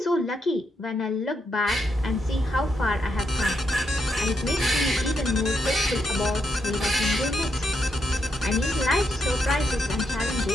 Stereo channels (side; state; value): both; normal; correlation 0.80